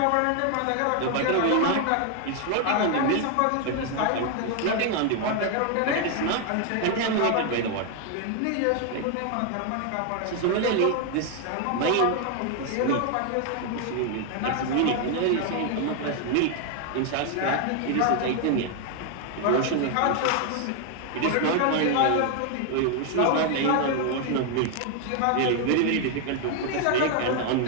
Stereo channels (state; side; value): different; both; correlation 0.01